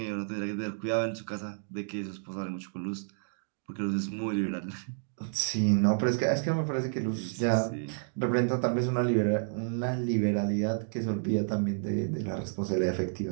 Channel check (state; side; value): silent; left; digital silence